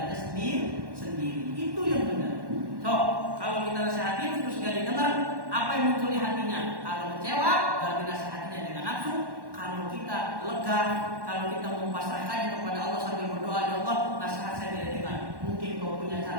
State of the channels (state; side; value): late; left; 1.1 ms